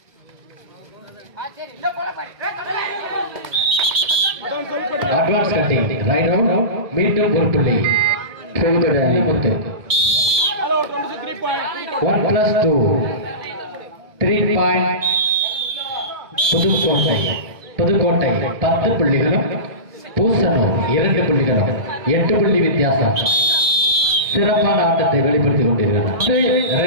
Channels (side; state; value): left; late; 2.4 ms